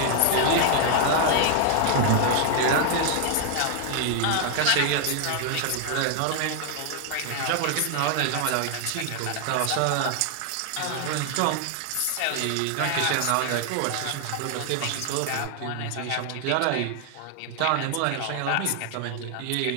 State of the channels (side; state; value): both; different; correlation 0.00